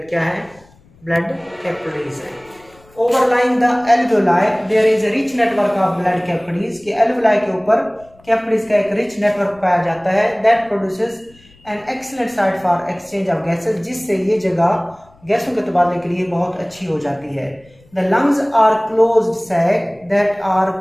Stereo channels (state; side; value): noise; left; rumble, 29 dB below the sound